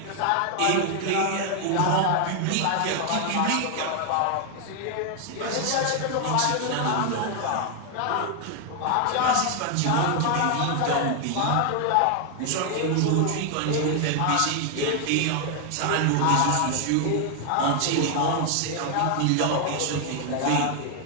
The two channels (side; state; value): both; different; correlation 0.00